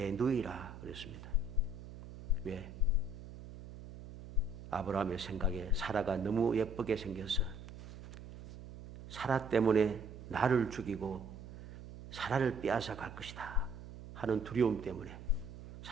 누이라 그랬습니다. 왜? 아브라함의 생각에 사라가 너무 예쁘게 생겨서 사라 때문에 나를 죽이고 사라를 빼앗아 갈 것이다 하는 두려움 때문에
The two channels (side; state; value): right; noise; hum, 13 dB below the sound